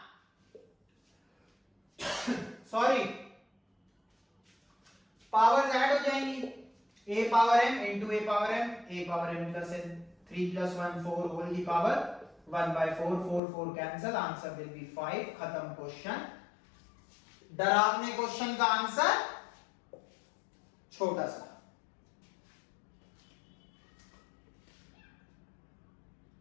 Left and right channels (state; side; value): drops out; right; at 13.4 s